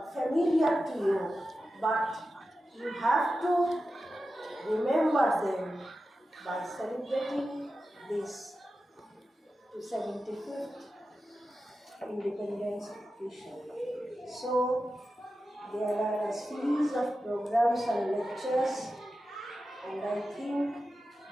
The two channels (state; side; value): normal; both; correlation 0.92